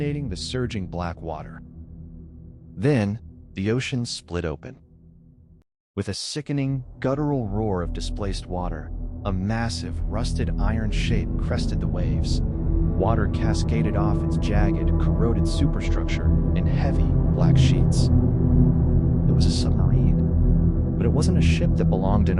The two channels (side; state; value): both; identical; correlation 1.00